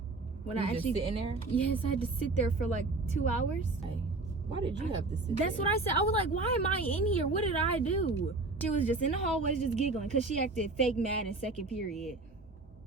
When you I actually just sitting there? Yes, I had to sit there for like 2 hours. Hey, why did you have to sit That's there? what I said. I was like, why am I in here? What did I do? She was just in the hallways just giggling because she acted fake mad in second period.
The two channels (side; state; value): left; quieter; 3.4 dB